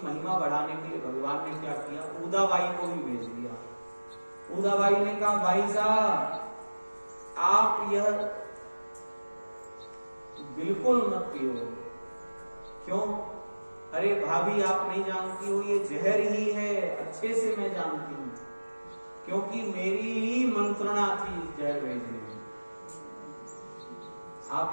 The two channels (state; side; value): inverted; both; correlation -1.00